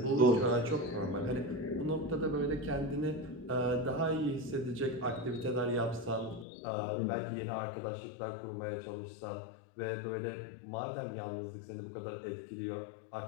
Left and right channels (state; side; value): drops out; right; at 6.5 s